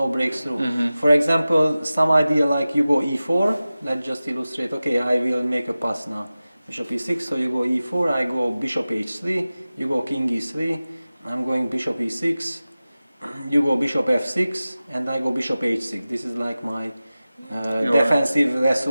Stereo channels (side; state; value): both; inverted; correlation -0.96